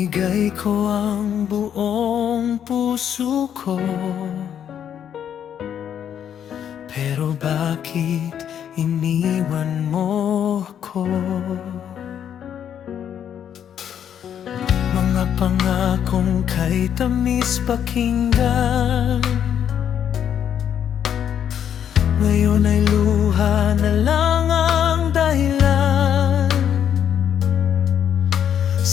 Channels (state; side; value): quieter; right; 9.1 dB